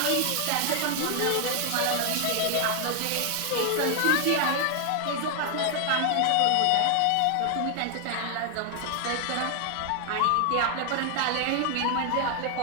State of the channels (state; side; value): different; both; correlation 0.00